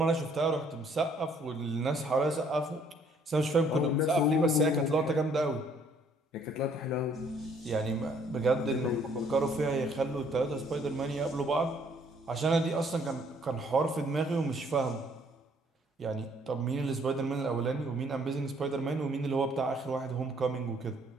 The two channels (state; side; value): normal; both; correlation 0.63